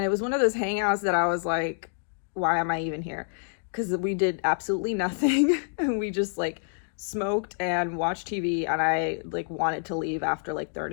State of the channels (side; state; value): right; silent; digital silence